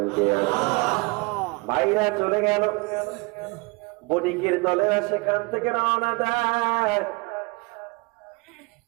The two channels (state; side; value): quieter; left; 27.9 dB